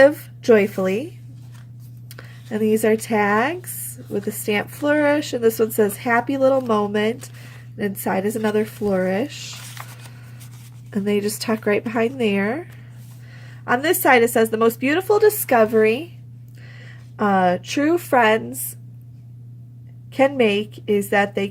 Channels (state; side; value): identical; both; correlation 1.00